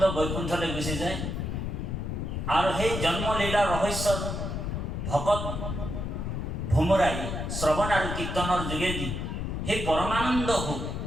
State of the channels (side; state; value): left; noise; rumble, 3 dB below the sound